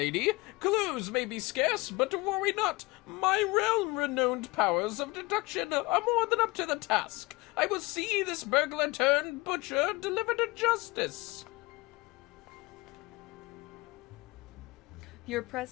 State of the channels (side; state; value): right; quieter; 23.4 dB